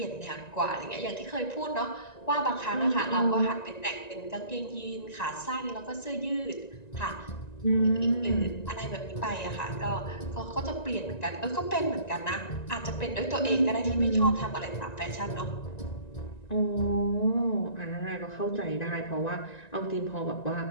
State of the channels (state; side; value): late; right; 1.9 ms